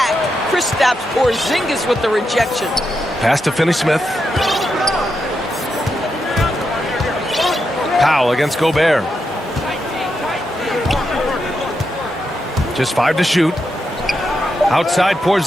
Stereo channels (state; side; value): normal; both; correlation 0.85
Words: Kristaps Porzingis with the rejection. Pass to Finney Smith. Powell against Gobert. Just 5 to shoot. Outside